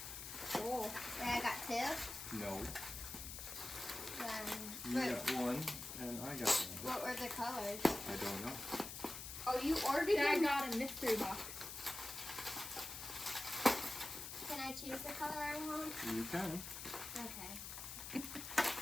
Oh, I got two. No. Then, You got one, and I got one. what were the colors? I don't know. Oh, you ordered Dad them? got a mystery box. Can I choose the color I want? You can. Okay.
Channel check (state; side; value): noise; left; hiss, 8 dB below the sound